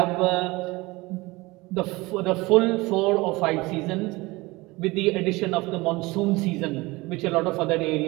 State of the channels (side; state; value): left; quieter; 22.2 dB